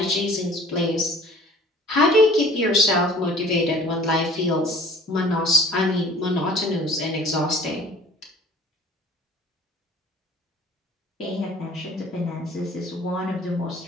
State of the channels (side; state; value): both; normal; correlation 0.49